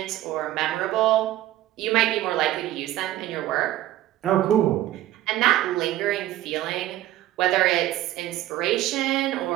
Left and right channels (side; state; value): left; quieter; 14.1 dB